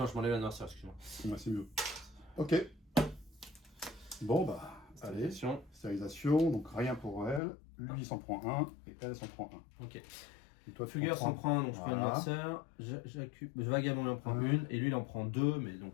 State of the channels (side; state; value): right; drops out; at 7.4 s